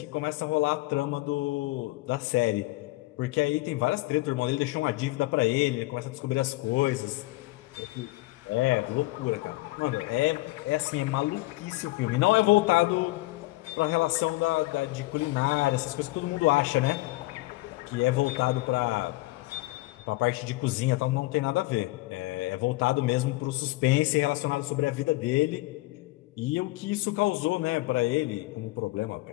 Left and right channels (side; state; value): right; quieter; 20.4 dB